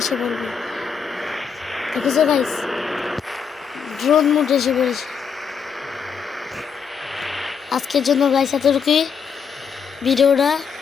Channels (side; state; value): right; quieter; 6.5 dB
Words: বলবে। দেখেছো গাইস, ড্রোন মোড এসে পড়েছে। আজকের জন্য গাইস এতটুকুই ভিডিওটা।